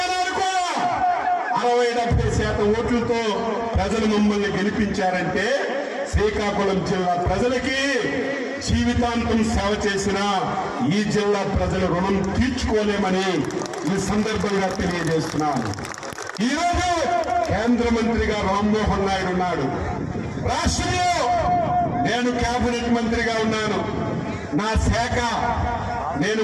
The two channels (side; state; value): both; identical; correlation 1.00